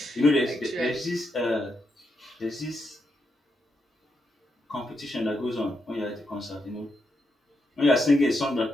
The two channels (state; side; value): normal; both; correlation 0.83